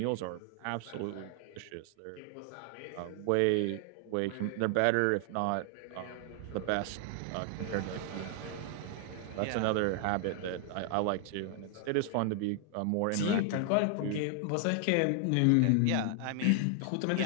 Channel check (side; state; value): both; different; correlation 0.00